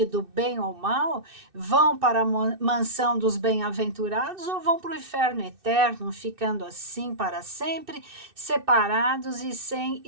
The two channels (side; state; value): left; late; 2.6 ms